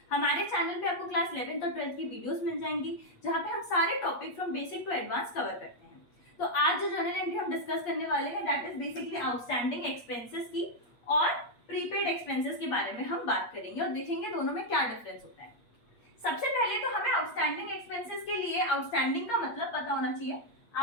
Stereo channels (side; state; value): right; late; 8.5 ms